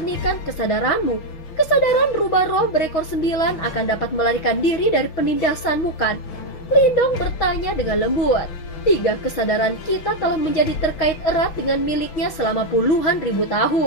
kesadaranmu, kesadaran rubah roh berekor 9 akan dapat melarikan diri dari penindasanmu kan? Lindong bertanya dengan lembut. Tiga kesadaran kita telah menjadi terkait erat dengan miliknya selama puluhan ribu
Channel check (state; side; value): late; right; 6.3 ms